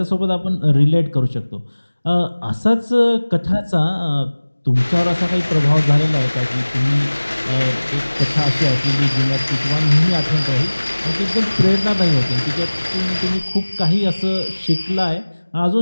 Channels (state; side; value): inverted; both; correlation -1.00